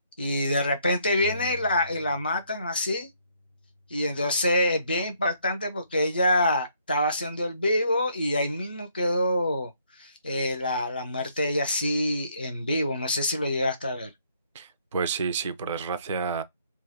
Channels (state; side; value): inverted; both; correlation -0.68